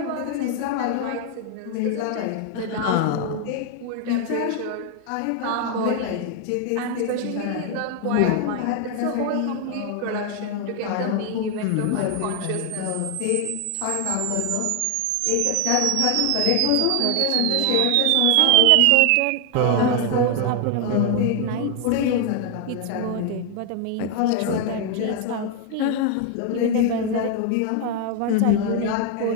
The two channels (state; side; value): different; both; correlation 0.00